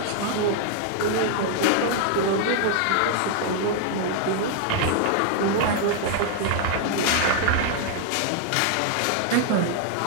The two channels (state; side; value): different; both; correlation 0.00